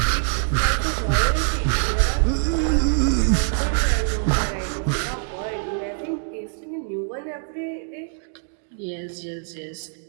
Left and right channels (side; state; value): left; silent; digital silence